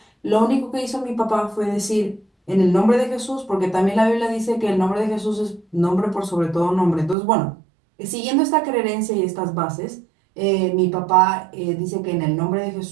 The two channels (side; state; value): left; drops out; at 7.2 s